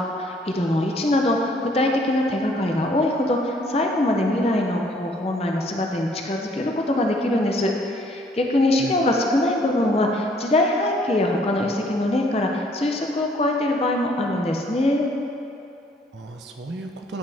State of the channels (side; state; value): both; normal; correlation 0.62